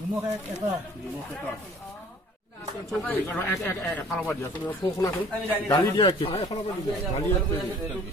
দালি দিয়া চেনি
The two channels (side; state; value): both; normal; correlation 0.52